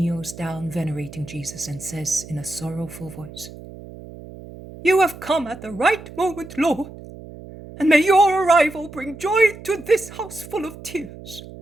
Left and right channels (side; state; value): right; noise; hum, 15 dB below the sound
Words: down venerating Jesus and says in a sorrowful voice, "You have come at the right moment, Lord, and may your arrival bring joy to this house full of tears.